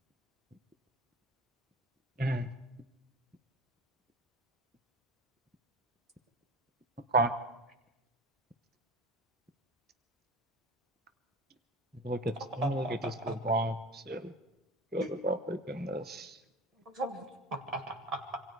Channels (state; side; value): normal; both; correlation 0.33